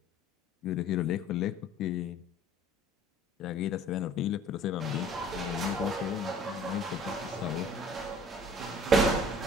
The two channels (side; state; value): both; normal; correlation 0.50